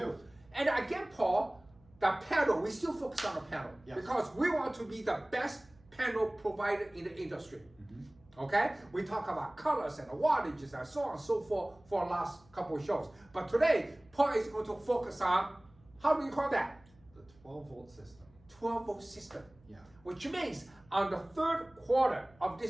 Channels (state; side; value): noise; right; hum, 28 dB below the sound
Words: And again, Paul, the panel, we still focus on the panel Yes. because we want to be the best panel provider in the industry. Okay? We talk about colors and wattages and so on and so forth for the last couple of shows. But today, Paul is going to focus on, how do you call that? The 12-volt system. 12-volt system. Yeah. Which means on the third quarter of